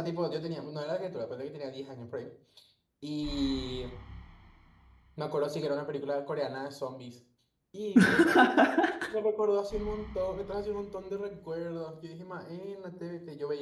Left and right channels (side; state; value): both; identical; correlation 1.00